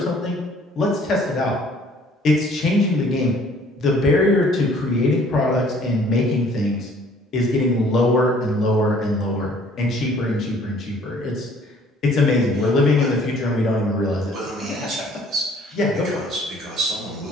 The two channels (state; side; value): normal; both; correlation 0.57